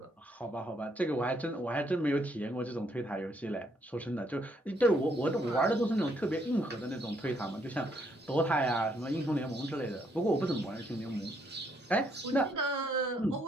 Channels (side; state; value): both; normal; correlation 0.71